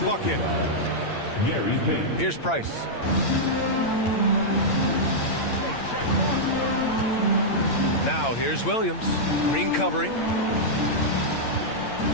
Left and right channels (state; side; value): late; right; 8.8 ms